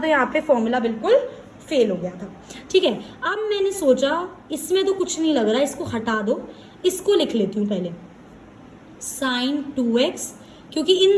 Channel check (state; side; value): identical; both; correlation 1.00